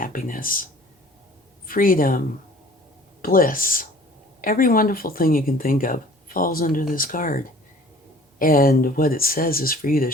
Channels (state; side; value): normal; both; correlation 0.50